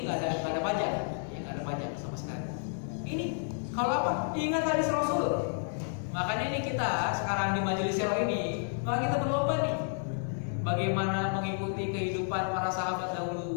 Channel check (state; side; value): silent; right; digital silence